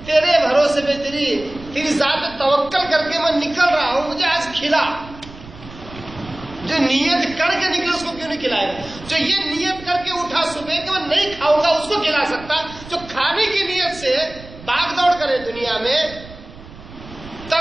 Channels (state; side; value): noise; right; rumble, 17 dB below the sound